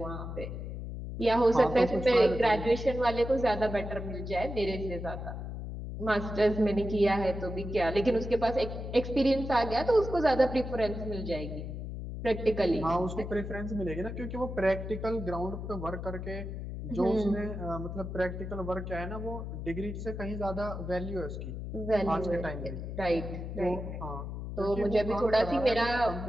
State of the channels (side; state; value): left; noise; hum, 7 dB below the sound